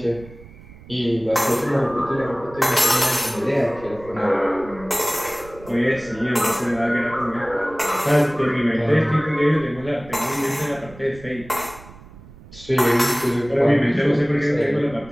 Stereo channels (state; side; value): noise; right; rumble, 20 dB below the sound